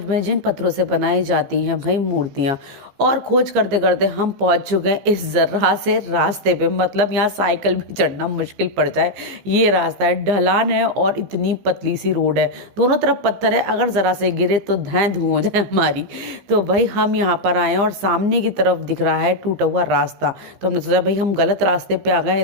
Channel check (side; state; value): left; late; 15 ms